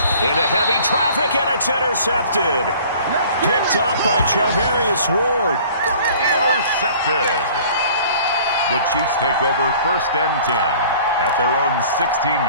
into heavy traffic, and it's intercepted. Picked up by Charvarius Ward. Intercepted. The Chiefs take over 1st and 10 at their own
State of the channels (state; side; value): inverted; both; correlation -0.50